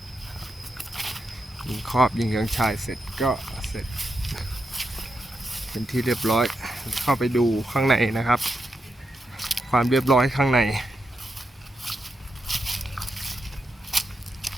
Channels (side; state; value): both; normal; correlation 0.85